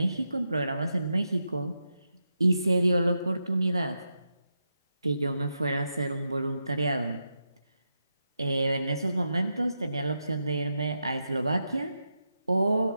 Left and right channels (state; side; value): inverted; both; correlation -0.86